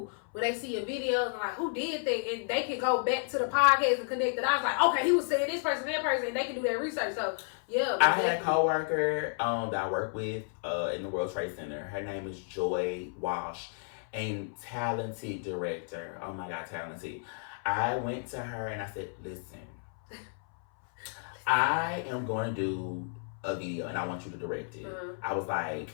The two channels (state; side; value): silent; right; 57 dB below the other